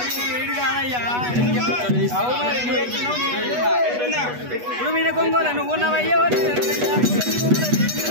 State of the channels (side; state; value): left; late; 8.2 ms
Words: కొంగోల నువ్వు ఉన్నవయ్యో